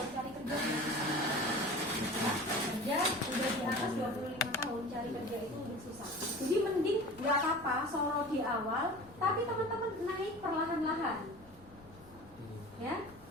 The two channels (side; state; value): left; noise; rumble, 24 dB below the sound